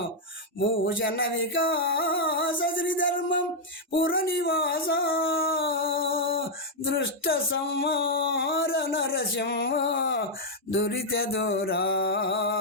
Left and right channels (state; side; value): normal; both; correlation -0.03